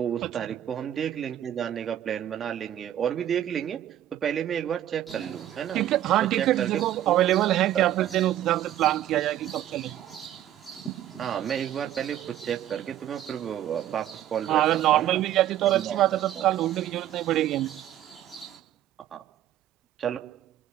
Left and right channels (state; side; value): quieter; left; 12.1 dB